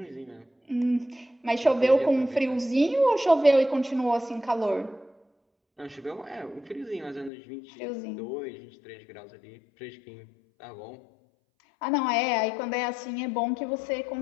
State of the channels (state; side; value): drops out; right; at 7.3 s